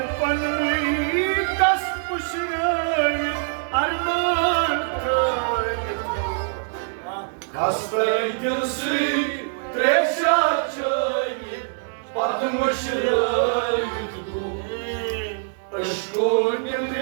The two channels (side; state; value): left; silent; digital silence